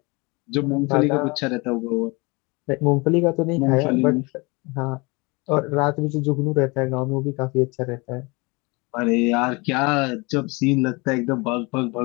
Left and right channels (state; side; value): quieter; right; 27.0 dB